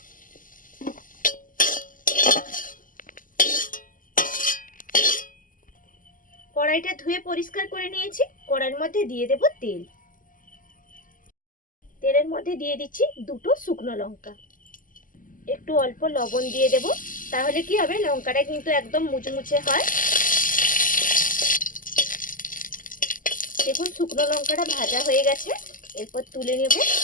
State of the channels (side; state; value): right; late; 0.39 ms